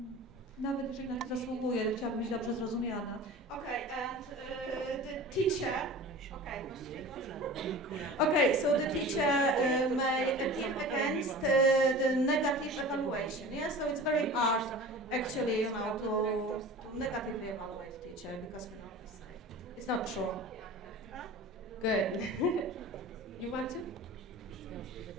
Nawet jeżeli na nie zasługuje, chciałabym być dobrze zrozumiana. Okay, and the teacher. Okay, so the teacher may appeal against the negative evaluation. Yeah, so it's very hard, actually, to negatively evaluate teacher because it's not true. Good. You want to?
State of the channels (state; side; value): normal; both; correlation 0.37